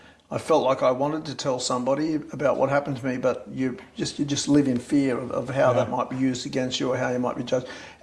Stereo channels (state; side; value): identical; both; correlation 1.00